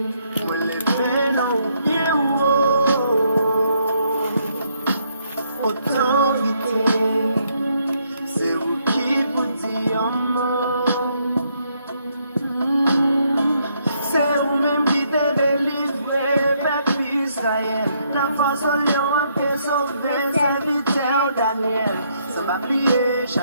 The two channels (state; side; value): inverted; both; correlation -0.72